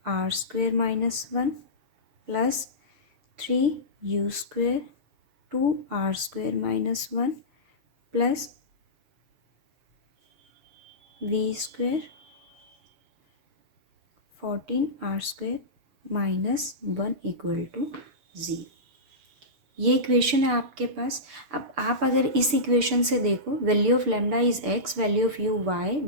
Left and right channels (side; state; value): left; late; 6.7 ms